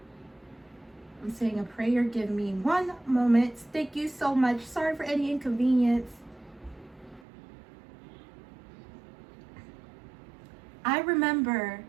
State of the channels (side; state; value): left; drops out; at 7.2 s